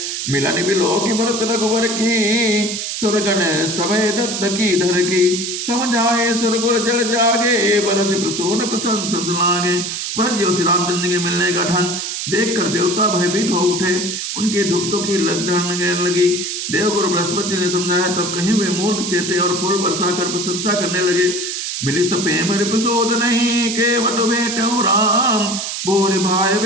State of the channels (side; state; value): right; noise; hiss, 4 dB below the sound